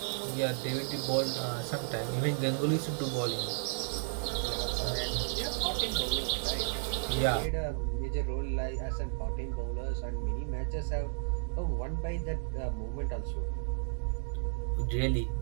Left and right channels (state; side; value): silent; left; digital silence